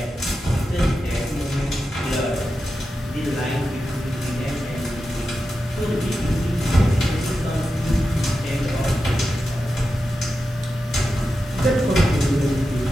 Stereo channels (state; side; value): normal; both; correlation 0.90